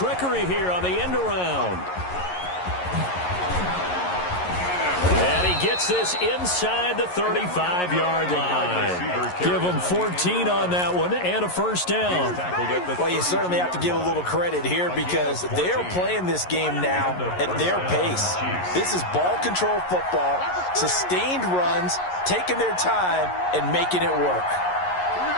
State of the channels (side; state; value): right; late; 11 ms